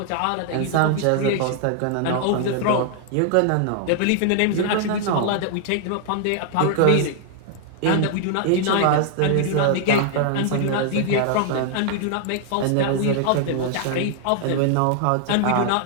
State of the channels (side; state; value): both; different; correlation 0.00